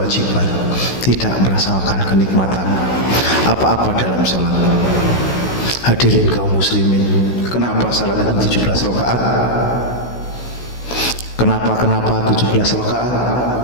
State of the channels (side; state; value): right; late; 16 ms